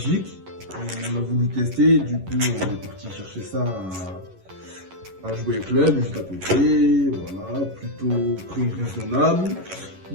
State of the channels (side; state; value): left; late; 11 ms